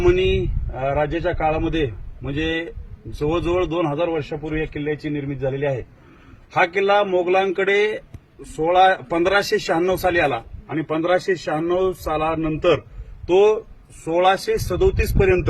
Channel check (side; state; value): both; identical; correlation 1.00